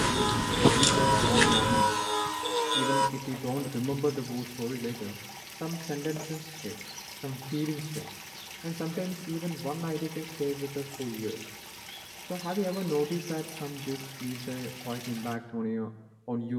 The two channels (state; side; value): identical; both; correlation 1.00